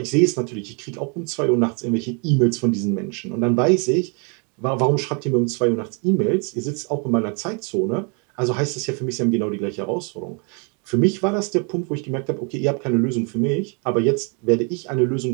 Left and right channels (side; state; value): left; quieter; 36.3 dB